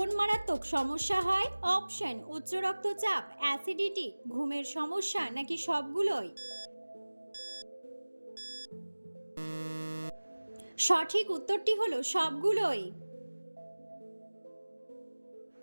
মারাত্মক সমস্যা হয়? অপশন: উচ্চ রক্তচাপ, অ্যাসিডিটি, ঘুমের সমস্যা নাকি সবগুলোই। সঠিক উত্তরটি হলো সবগুলোই।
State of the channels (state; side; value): inverted; both; correlation -1.00